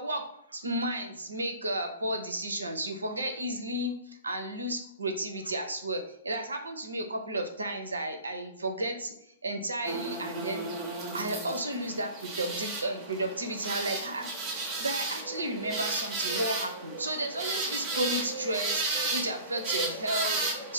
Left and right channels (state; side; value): inverted; both; correlation -0.45